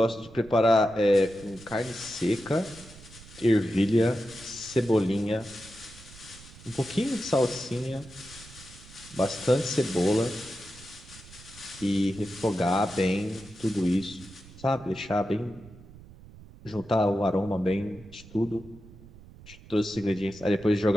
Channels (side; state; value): right; noise; rumble, 20 dB below the sound